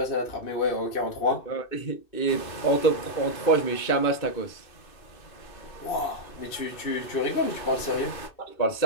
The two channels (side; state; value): right; late; 2.6 ms